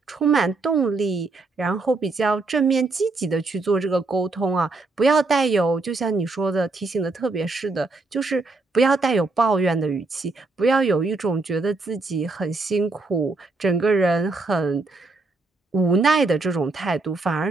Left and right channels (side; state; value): left; quieter; 3.5 dB